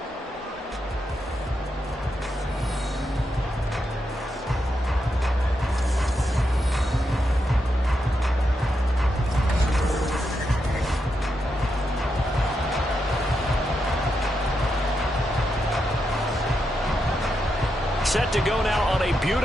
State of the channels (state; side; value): normal; both; correlation 0.84